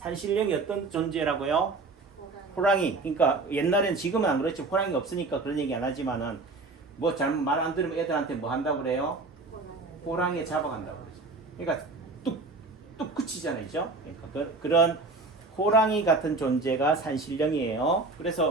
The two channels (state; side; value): quieter; left; 3.6 dB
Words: 어떤 존재라고요? 호랑이. 그러니까 옛날엔 지금은 안 그렇지. 호랑이 없으니까 그런 얘기 안 하지만은 뭐 잘못 말 안 들으면 애들한테 뭐 한다고 그래요? 호랑이에 잡아간다고 그러죠. 그러니까 뚝뚝 그치잖아요. 그죠? 그러니까 그런 호랑이 같은 존재가 산신령이에요.